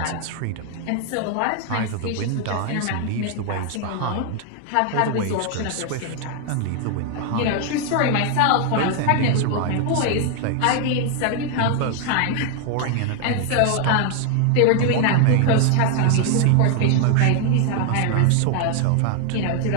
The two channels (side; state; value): both; different; correlation 0.00